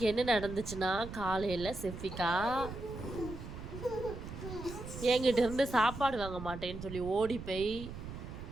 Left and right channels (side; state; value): right; noise; rumble, 10 dB below the sound